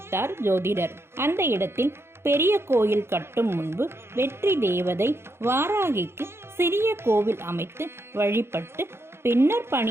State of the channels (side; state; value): left; late; 0.12 ms